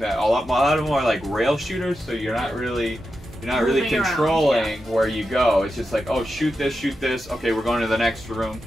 a lot of them are like rail shooters, so you're not really controlling where you go. It's just like, oh, shoot this, okay, we're going to the next room.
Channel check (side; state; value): both; normal; correlation 0.89